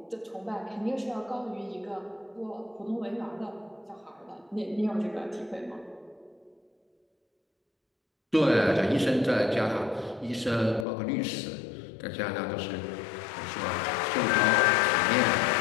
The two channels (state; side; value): drops out; right; at 10.9 s